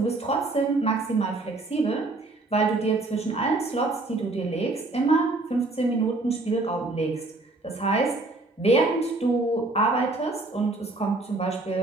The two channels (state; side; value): quieter; left; 3.1 dB